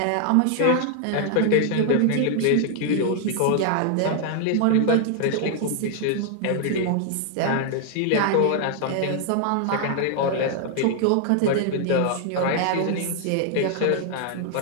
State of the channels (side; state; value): both; different; correlation 0.00